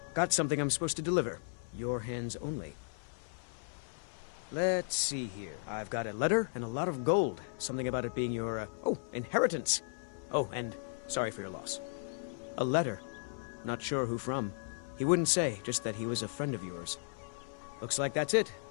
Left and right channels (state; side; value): silent; right; 54 dB below the other